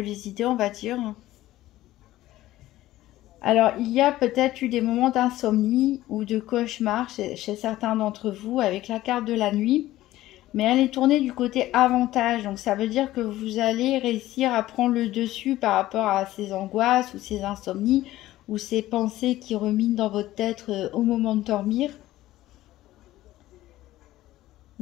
les idées, on va dire. Alors, il y a peut-être eu des moments d'insomnie ou de cauchemar chez certains d'entre vous avec la carte de la nuit. Mais elle est tournée du côté avantage. Donc, ça veut dire que vous allez réussir à prendre le dessus par rapport à ces angoisses ou ces insomnies ou ces pensées qui ruminent dans votre tête au moment de dormir.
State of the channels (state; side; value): quieter; right; 15.5 dB